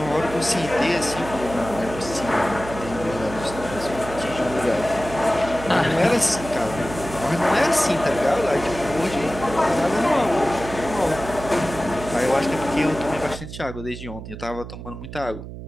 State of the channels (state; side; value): noise; right; hum, 11 dB below the sound